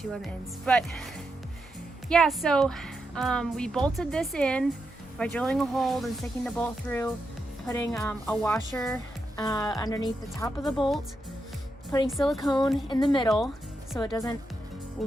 on the ends. But yeah, so we bolted this in by drilling a hole and sticking the bolt through, putting a washer underneath the top of the bolt, putting silicone in the middle so it doesn't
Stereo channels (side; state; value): both; normal; correlation 0.85